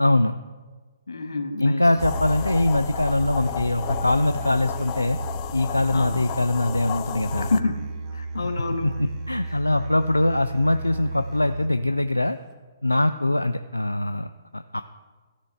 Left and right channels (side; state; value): both; inverted; correlation -0.93